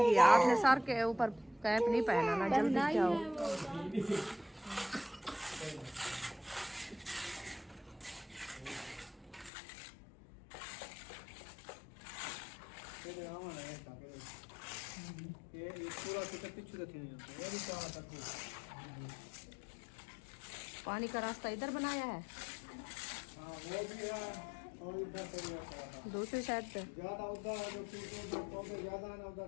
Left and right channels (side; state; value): right; drops out; at 9.5 s